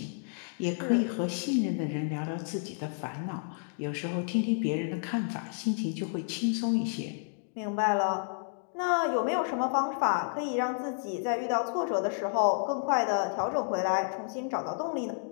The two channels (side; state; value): right; silent; digital silence